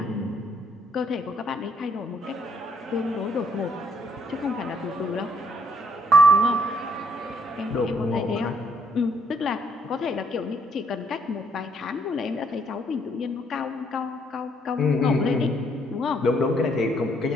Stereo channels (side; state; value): both; normal; correlation 0.69